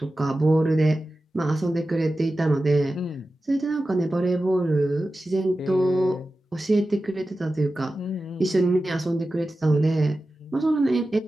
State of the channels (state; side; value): normal; both; correlation 0.94